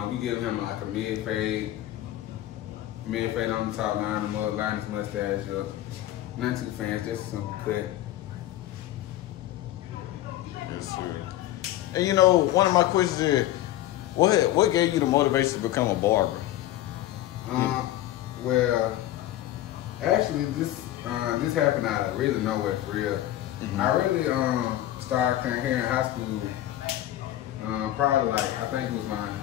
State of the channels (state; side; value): quieter; right; 14.1 dB